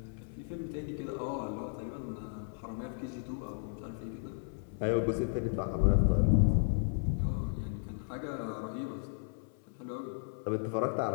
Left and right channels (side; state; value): right; silent; 55 dB below the other